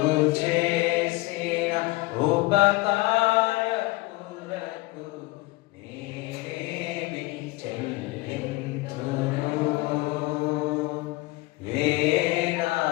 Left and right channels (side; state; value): right; quieter; 21.3 dB